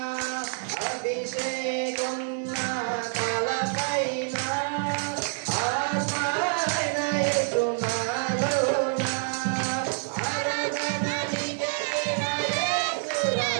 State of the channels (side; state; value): left; silent; 60 dB below the other